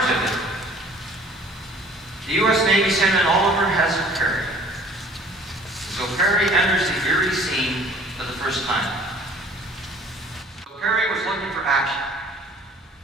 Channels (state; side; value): normal; both; correlation 0.52